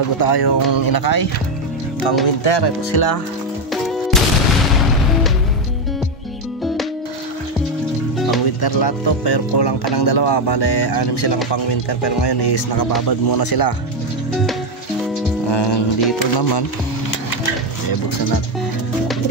tayong inakay pang winter. Ito sila, pang winter lahat to, pero kulang pa ng dalawa. Bale, 6 silang pang winter, pero ngayon is nakababad muna sila. Dito naman buksan natin.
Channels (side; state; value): both; normal; correlation 0.07